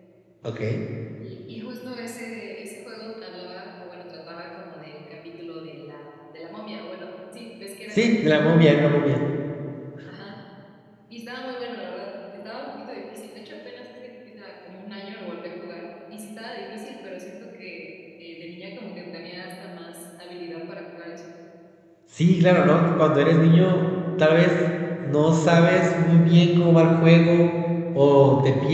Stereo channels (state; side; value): identical; both; correlation 1.00